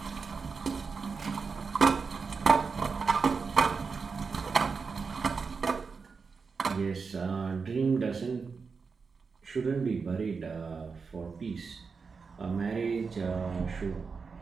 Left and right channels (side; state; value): left; quieter; 5.1 dB